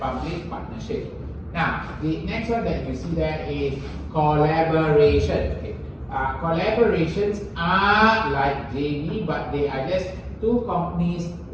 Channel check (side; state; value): both; identical; correlation 1.00